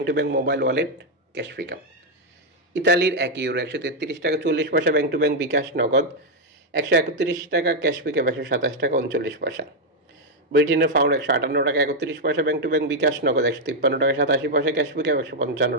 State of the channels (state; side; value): normal; both; correlation 0.00